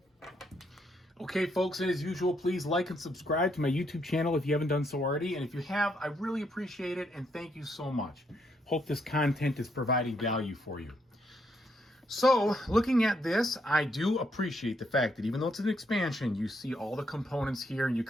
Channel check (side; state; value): both; normal; correlation 0.75